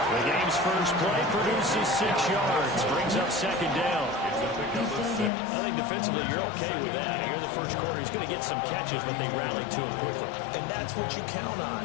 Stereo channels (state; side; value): drops out; right; at 5.3 s